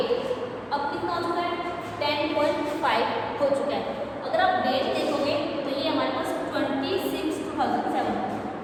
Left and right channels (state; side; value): identical; both; correlation 1.00